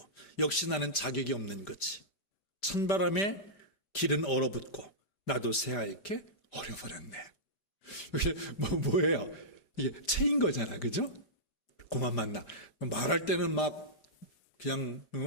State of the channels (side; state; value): right; late; 5.1 ms